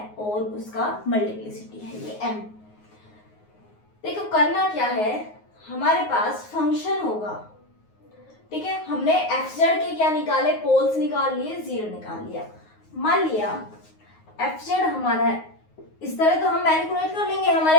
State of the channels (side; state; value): right; late; 9.5 ms